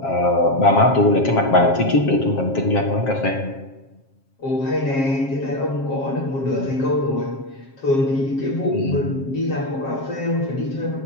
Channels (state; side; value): late; right; 7.5 ms